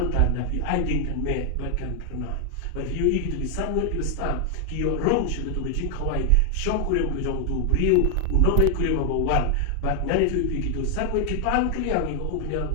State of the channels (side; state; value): both; different; correlation 0.00